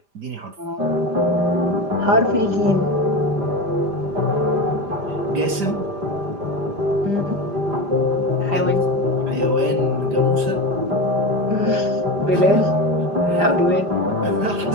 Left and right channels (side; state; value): left; late; 5.0 ms